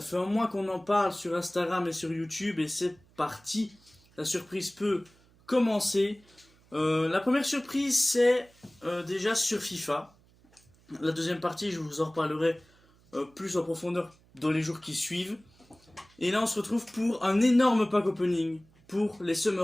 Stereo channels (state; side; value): noise; right; hum, 30 dB below the sound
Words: fait un mois qu'on en parle sur Instagram et sur YouTube et c'est parti. La surprise peut commencer. La première surprise c'est déjà sur FIFA. La deuxième partie, je vous en reparlerai plus en profondeur dans les jours qui suivent. Et là, on se retrouve pour un énorme pack opening pour les